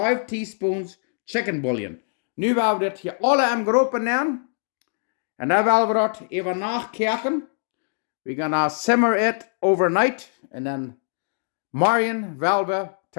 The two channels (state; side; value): silent; right; digital silence